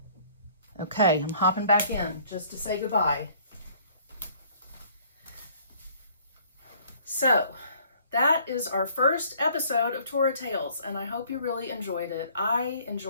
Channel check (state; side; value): inverted; both; correlation -0.58